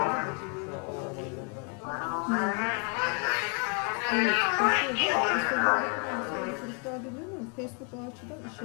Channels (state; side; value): quieter; right; 37.6 dB